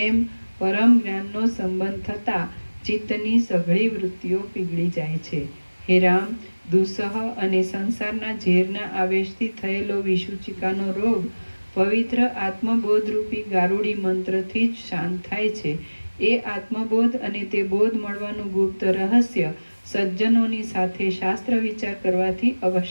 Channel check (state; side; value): inverted; both; correlation -1.00